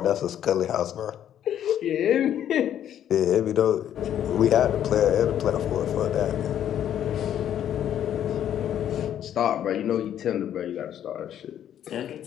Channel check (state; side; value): quieter; right; 10.4 dB